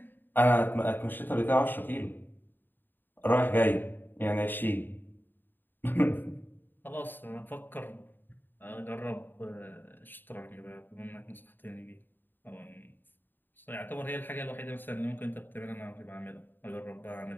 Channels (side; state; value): right; late; 0.093 ms